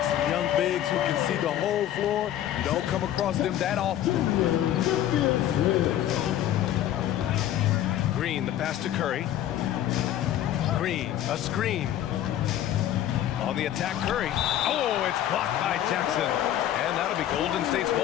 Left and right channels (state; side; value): quieter; right; 11.9 dB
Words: Young bigs who can see the whole floor. You don't come across them that often. Green, the pass to Curry. Green, a screen. On the attack, Curry. Oh, it's blocked by Jackson. And that'll be Golden State's